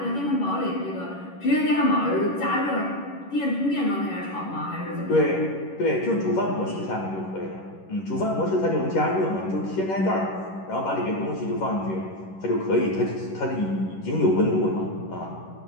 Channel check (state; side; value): late; right; 11 ms